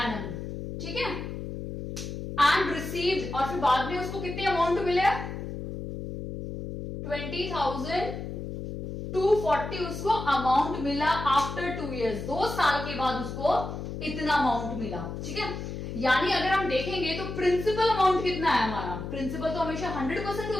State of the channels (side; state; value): left; noise; hum, 7 dB below the sound